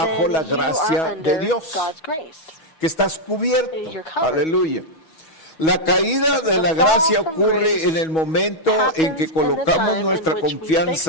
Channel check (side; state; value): right; late; 6.2 ms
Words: la gracia de Dios, que estás cubierto. Aleluya. La caída de la gracia ocurre en el momento en que colocamos nuestra